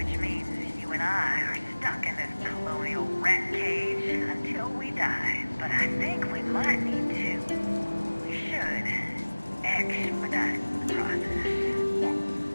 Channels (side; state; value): both; inverted; correlation -1.00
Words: means you and I are stuck in this colonial rat cage until we die. But I think we might need to. We should expedite the process.